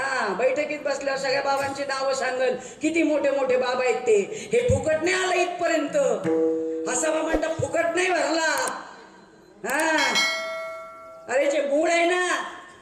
बैठकीत बसल्यावर सगळ्या बाबांची नावं सांगल. किती मोठे मोठे बाबा आहेत ते. हे फुकट नाही आलं इथपर्यंत. हसावा म्हणता फुकट नाही भरला. अरे जे मूळ आहे ना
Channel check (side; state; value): both; identical; correlation 1.00